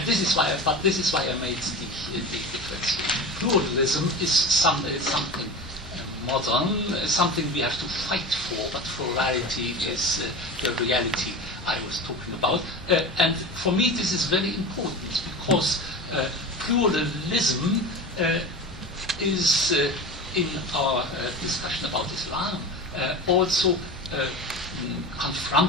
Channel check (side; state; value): both; normal; correlation 0.29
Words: this is why I made the difference. Pluralism is something modern, something we have to fight for, but plurality is the reality I was talking about. And for me this is very important, because pluralism is in our discussion about Islam also